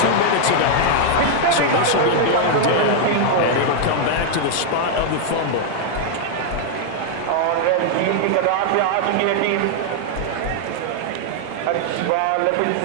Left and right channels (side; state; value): both; different; correlation -0.01